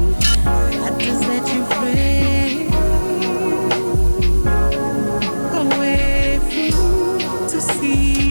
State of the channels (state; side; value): inverted; both; correlation -1.00